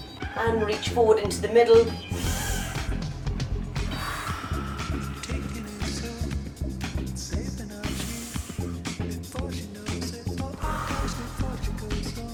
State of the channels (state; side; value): identical; both; correlation 1.00